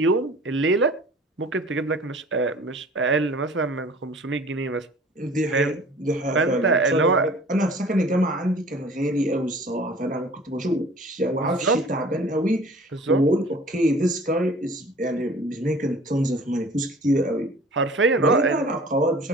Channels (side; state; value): both; normal; correlation 0.47